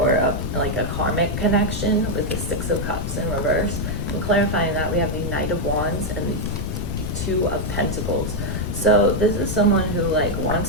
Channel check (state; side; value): noise; left; rumble, 3 dB below the sound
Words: like a karmic connection with the 6 of Cups in reverse. And clarifying that, we have the Knight of Wands and the 2 of Pentacles. So this is someone who like